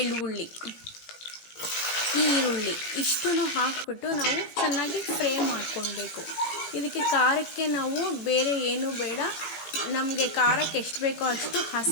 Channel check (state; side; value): late; right; 18 ms